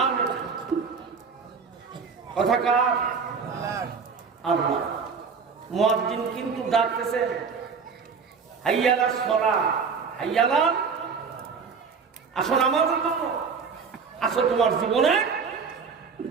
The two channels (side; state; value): left; quieter; 5.6 dB